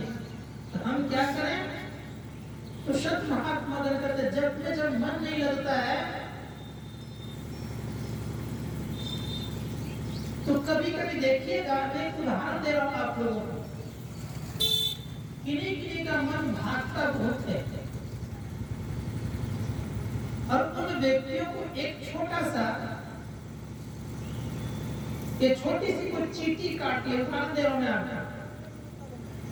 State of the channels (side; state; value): both; identical; correlation 1.00